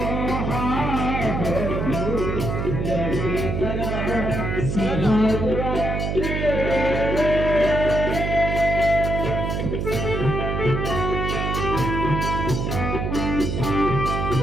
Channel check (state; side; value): noise; right; hum, 1 dB below the sound